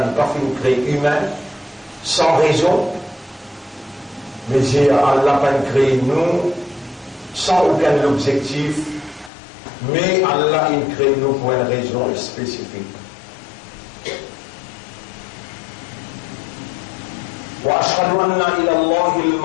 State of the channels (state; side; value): drops out; right; at 9.3 s